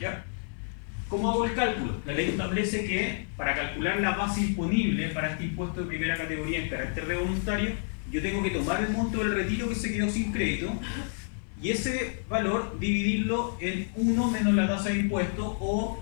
¿Cómo hago el cálculo? La ley establece que para calcular la base imponible para este impuesto de primera categoría en carácter de voluntario, yo tengo que tomar el monto del retiro que se quedó sin crédito y ese valor dividirlo en 1 menos la tasa de impuesto, o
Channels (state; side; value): silent; right; 59 dB below the other